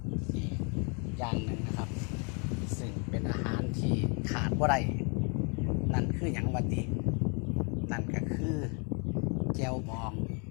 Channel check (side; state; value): right; quieter; 35.9 dB